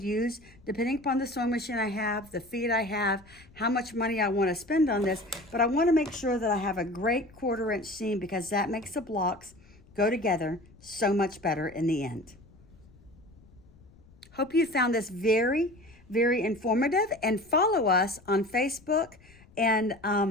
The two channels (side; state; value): left; noise; rumble, 26 dB below the sound